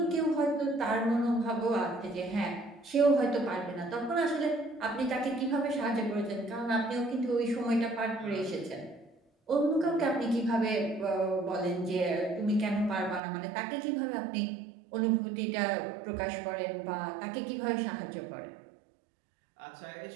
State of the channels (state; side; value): drops out; left; at 13.2 s